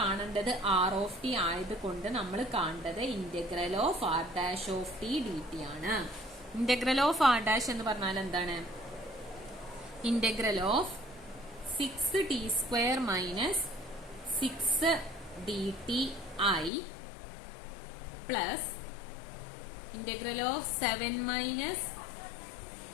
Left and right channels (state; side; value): drops out; right; at 16.7 s